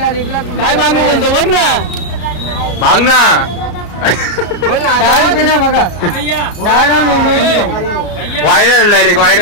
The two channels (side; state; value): right; late; 34 ms